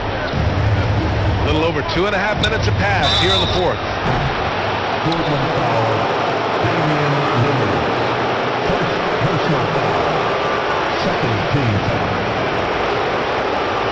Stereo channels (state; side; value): identical; both; correlation 1.00